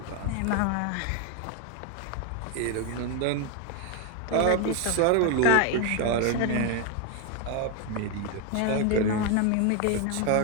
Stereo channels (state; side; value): different; both; correlation 0.01